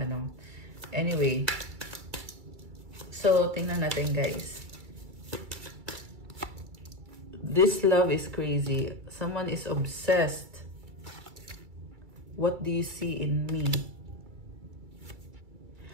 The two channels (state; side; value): late; left; 2.3 ms